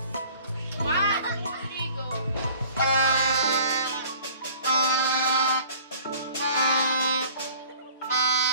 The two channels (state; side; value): inverted; both; correlation -0.50